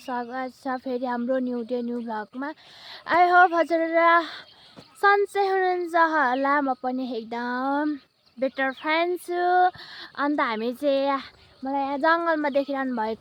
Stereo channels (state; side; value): identical; both; correlation 1.00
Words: स्वागत छ फेरि हाम्रो न्यू डे न्यू भ्लगमा। आई होप हजुरहरू सन्चै हुनुहुन्छ होला। म पनि एकदम बेटर फ्यान छु। अन्त हामी चाहिँ मलाई यहाँ जङ्गलमा देखिरहनु